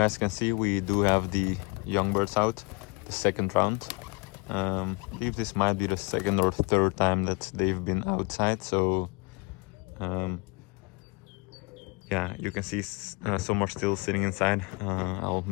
can see, we do have the young birds out, the second round. I believe this might be the second or third time that they've been outside. So yeah, you can see some are still sitting inside. I'll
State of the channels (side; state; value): right; quieter; 28.4 dB